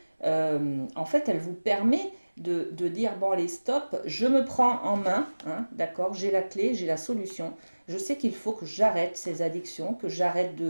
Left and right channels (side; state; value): both; inverted; correlation -1.00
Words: en fait, elle vous permet de dire, bon allez, stop, je me prends en main, hein, d'accord, j'ai la clé, j'ai la solution. Je sais qu'il faut que j'arrête ces addictions, que j'arrête